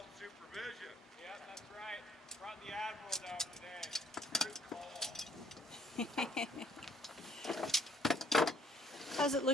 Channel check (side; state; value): both; normal; correlation 0.64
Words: supervision. Yeah, that's right. Brought the Admiral down today. Good call. How's it